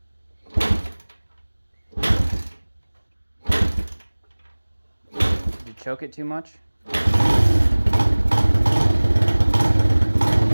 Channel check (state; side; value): inverted; both; correlation -1.00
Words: Did you choke it too much?